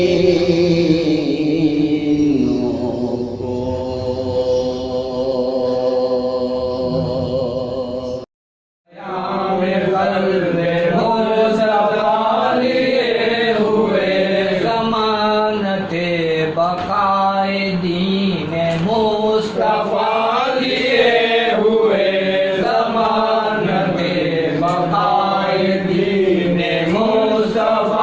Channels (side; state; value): both; identical; correlation 1.00